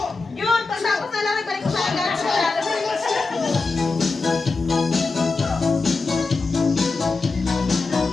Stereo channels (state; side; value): quieter; right; 4.0 dB